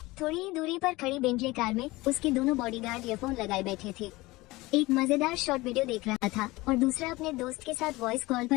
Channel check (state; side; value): quieter; right; 20.7 dB